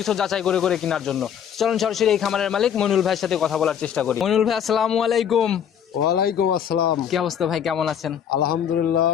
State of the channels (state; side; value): quieter; right; 8.6 dB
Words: যাচাই করে করে কেনার জন্য। চলুন সরাসরি এই খামারের মালিক মইনুল ভাইয়ের সাথে কথা বলার চেষ্টা করি। মইনুল ভাই, আসসালামু আলাইকুম। ওয়ালাইকুম আসসালাম। কি অবস্থা ভাই, কেমন আছেন? আলহামদুলিল্লাহ